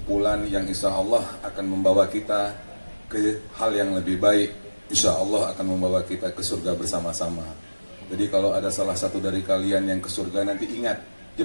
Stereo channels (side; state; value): both; inverted; correlation -1.00